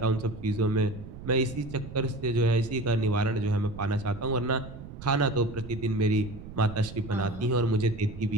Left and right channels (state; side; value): noise; right; rumble, 13 dB below the sound